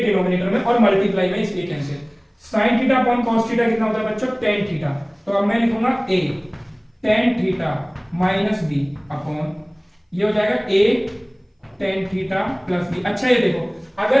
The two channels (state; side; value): identical; both; correlation 1.00